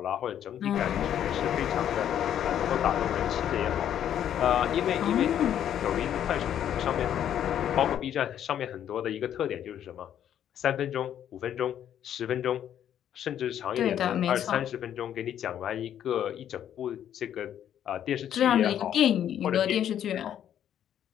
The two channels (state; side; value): quieter; right; 10.2 dB